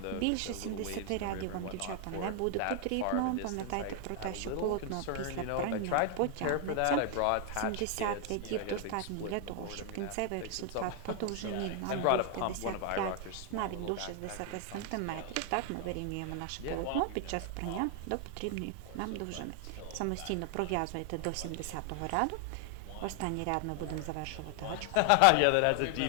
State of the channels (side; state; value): both; different; correlation 0.00